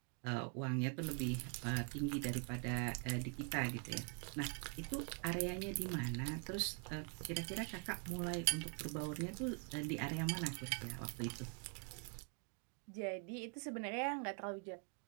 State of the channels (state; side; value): quieter; left; 36.3 dB